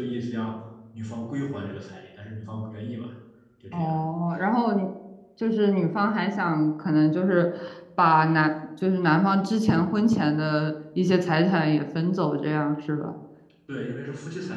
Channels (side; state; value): both; identical; correlation 1.00